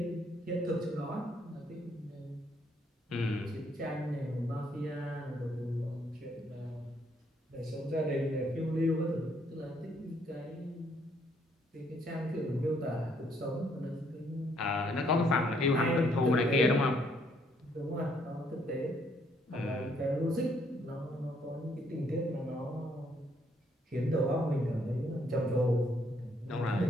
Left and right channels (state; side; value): normal; both; correlation 0.69